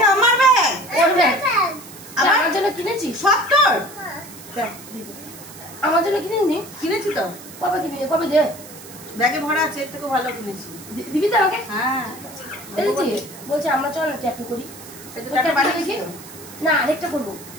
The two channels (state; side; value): noise; right; hiss, 17 dB below the sound